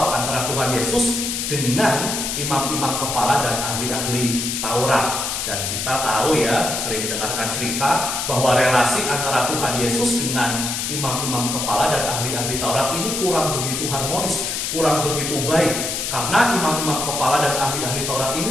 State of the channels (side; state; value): left; noise; hiss, 2 dB below the sound